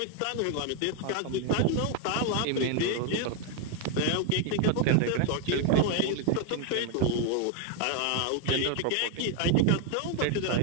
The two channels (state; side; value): different; both; correlation 0.01